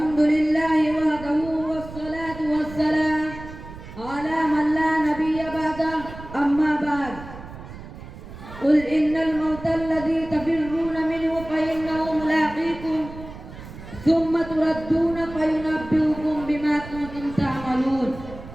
لله وحده والصلاة والسلام على من لا نبي بعده. أما بعد، قل إن الموت الذي تفرون منه فإنه ملاقيكم ثم تردون فينبئكم بما كنتم تعملون.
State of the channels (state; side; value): noise; right; rumble, 14 dB below the sound